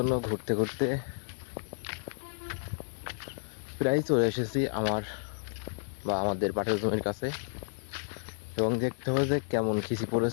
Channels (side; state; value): right; silent; digital silence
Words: ঘুরতে ঘুরতে প্রায় চলে এসেছি আমাদের পাটের জমির কাছে এবং দেখতে হবে যে কেমন খিচি